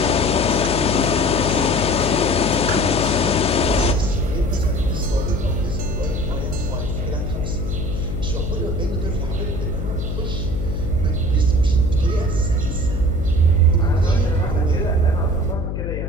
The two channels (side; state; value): left; noise; hum, 3 dB below the sound